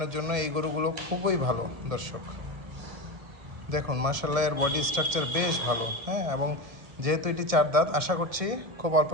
জন্য এই গরুগুলো খুবই ভালো দর্শক। দেখুন, মাশাআল্লাহ, এর বডি স্ট্রাকচার বেশ ভালো। হ্যাঁ, এবং যেহেতু এটি 4 দাঁত, আশা করছি খুব অল্প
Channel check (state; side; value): late; left; 1.7 ms